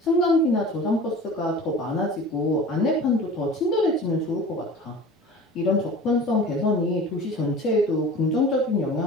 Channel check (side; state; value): both; normal; correlation 0.39